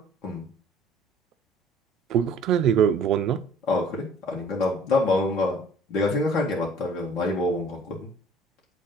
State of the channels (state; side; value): normal; both; correlation 0.53